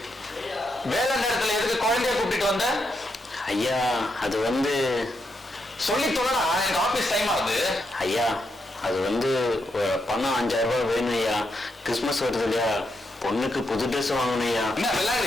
வேலை நேரத்துல எதுக்கு குழந்தைய கூப்பிட்டு வந்த? ஐயா, அது வந்து சொல்லி தொலைடா, எனக்கு ஆபீஸ் டைம் ஆகுது. ஐயா, அது வந்து பணம் 5000 ரூபாய் வேணும் ஐயா. கிறிஸ்துமஸ் வருது இல்லையா, பொண்ணுக்கு புது ட்ரெஸ் வாங்கணும் ஐயா. என்ன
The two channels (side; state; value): both; normal; correlation 0.82